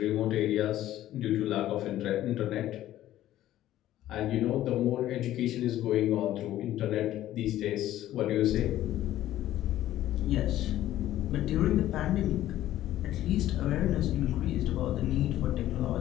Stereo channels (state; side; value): quieter; right; 13.6 dB